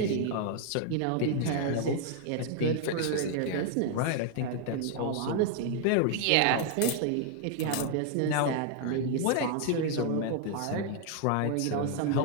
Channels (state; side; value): different; both; correlation 0.00